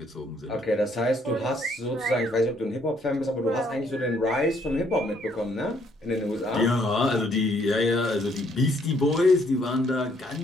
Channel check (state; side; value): normal; both; correlation 0.67